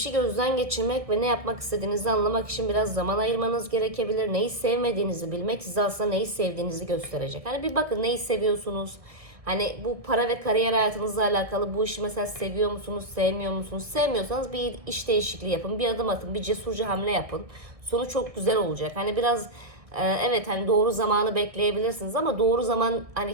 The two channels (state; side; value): late; left; 1.6 ms